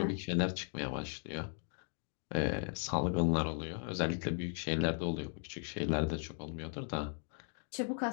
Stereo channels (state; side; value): silent; right; 53 dB below the other